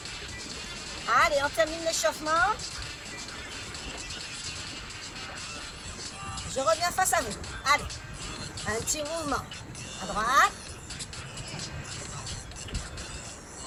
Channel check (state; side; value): identical; both; correlation 1.00